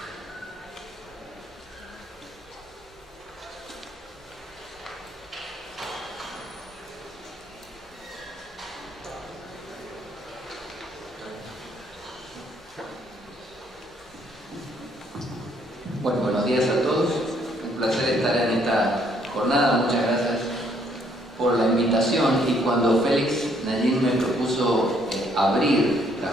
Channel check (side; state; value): both; normal; correlation 0.67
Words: Bueno, buenos días a todos. Un placer estar en esta jornada. Muchas gracias por la invitación. Y cuando Félix Nayín me propuso abrir la